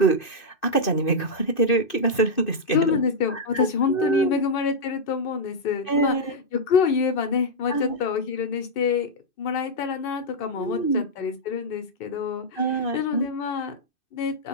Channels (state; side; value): late; right; 2.6 ms